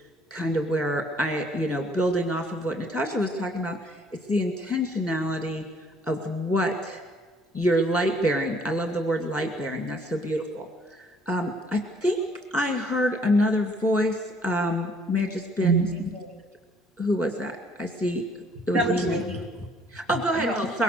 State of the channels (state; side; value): normal; both; correlation 0.62